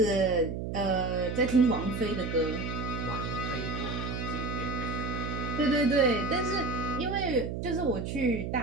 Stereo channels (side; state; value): right; noise; hum, 4 dB below the sound